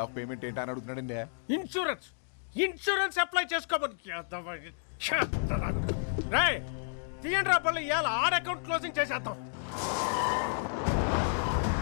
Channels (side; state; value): right; silent; digital silence